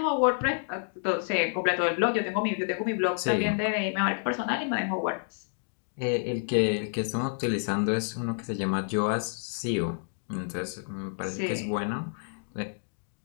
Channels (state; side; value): silent; right; digital silence